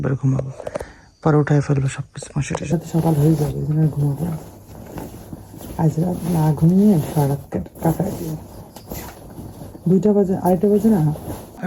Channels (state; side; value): identical; both; correlation 1.00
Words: ঘুমাবো, পরে উঠাই ফেলবো সব কিছু। মশারির সাথে সকাল হয়ে যাবে, এই জন্য ঘুমাবো। আজ রাত না ঘুমিয়ে সারা রাত কাটাই দিব। 2টা বাজে, 2:30 বাজে না,